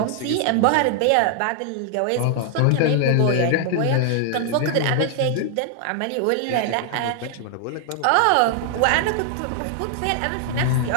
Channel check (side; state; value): both; different; correlation 0.00